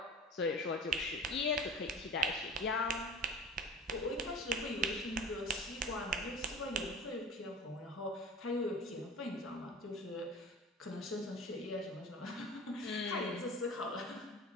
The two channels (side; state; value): both; normal; correlation 0.39